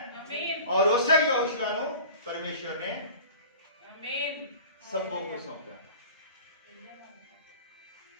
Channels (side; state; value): both; inverted; correlation -0.40